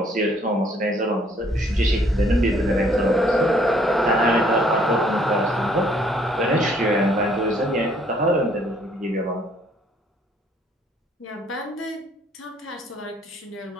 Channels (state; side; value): normal; both; correlation 0.63